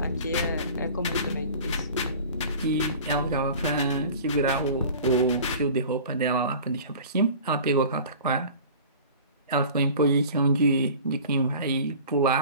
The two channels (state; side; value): inverted; both; correlation -0.42